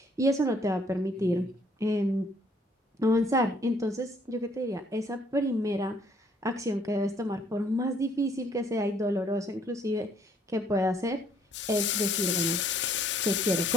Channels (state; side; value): normal; both; correlation 0.64